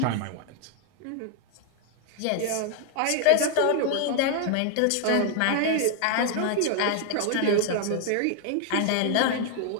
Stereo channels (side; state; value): both; different; correlation 0.00